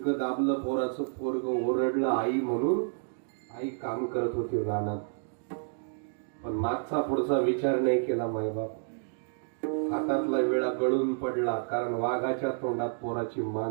दाबलं, पोराचं पोरग ओरडलं आई म्हणून. आई काम करत होती रानात, पण मागचा पुढचा विचार नाही केला मायबाप. हातातला विळा गळून पडला, कारण वाघाच्या तोंडात पोराची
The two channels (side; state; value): left; silent; digital silence